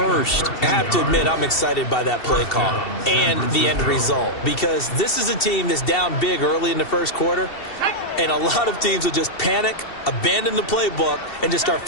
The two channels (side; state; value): right; late; 2.7 ms